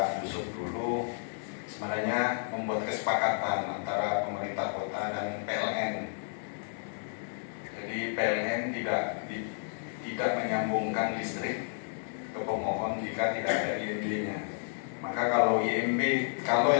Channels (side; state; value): right; silent; digital silence